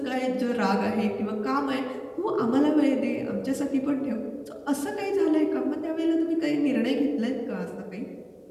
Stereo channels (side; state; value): both; identical; correlation 1.00